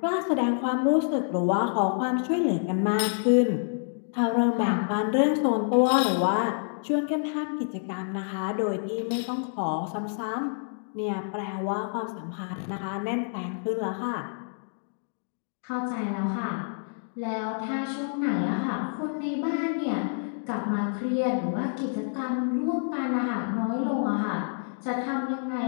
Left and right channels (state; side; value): silent; right; digital silence